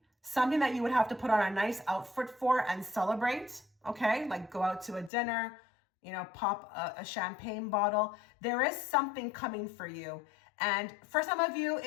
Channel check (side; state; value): right; drops out; at 5.1 s